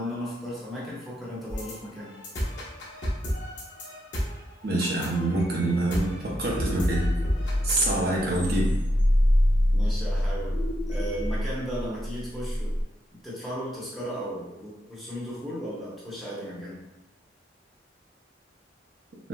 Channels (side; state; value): both; normal; correlation 0.81